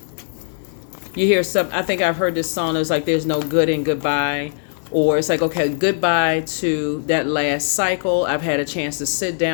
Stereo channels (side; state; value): right; silent; digital silence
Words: hear some. I think I've heard this song. It's like there's no good in goodbye. Or it's like, okay, goodbye to that last cycle. I've had a chance to sit